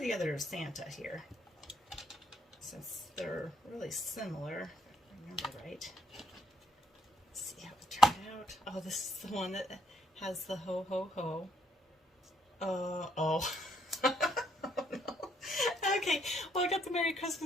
other Santa here, since they're really similar, if I remember right. Let's see how it turned out. Oh, this is the one that has the ho ho ho. Oh. Oh no. Okay, well, I got the Merry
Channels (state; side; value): normal; both; correlation 0.71